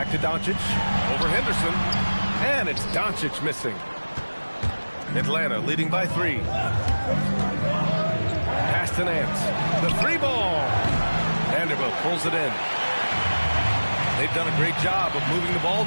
to Doncic. Over Henderson. And it's Doncic missing. Atlanta leading by 3. Pass to Nance. The three ball. Vanderbilt pulls it in. They've done a great job of moving the ball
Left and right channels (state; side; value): inverted; both; correlation -1.00